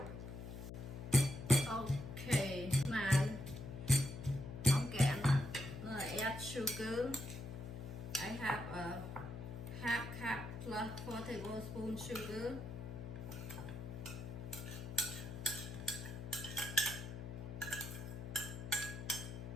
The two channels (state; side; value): noise; left; hum, 8 dB below the sound